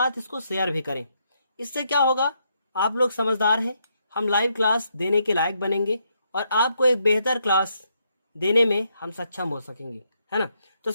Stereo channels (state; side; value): inverted; both; correlation -0.77